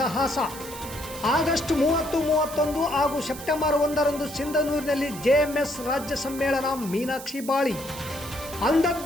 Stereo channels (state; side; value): noise; right; hiss, 13 dB below the sound